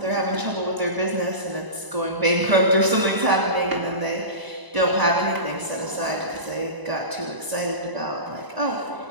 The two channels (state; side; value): late; left; 1.0 ms